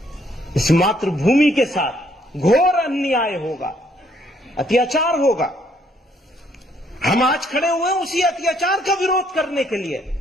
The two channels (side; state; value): both; normal; correlation 0.68